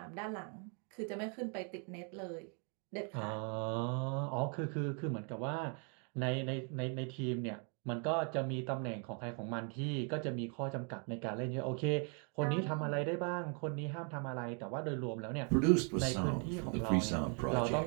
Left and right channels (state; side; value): quieter; left; 39.0 dB